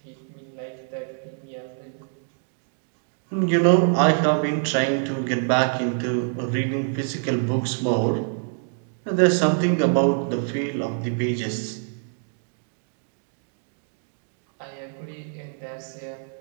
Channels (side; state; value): left; silent; 61 dB below the other